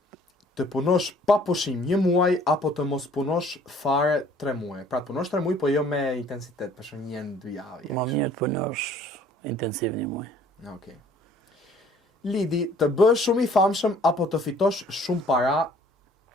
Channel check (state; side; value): normal; both; correlation 0.56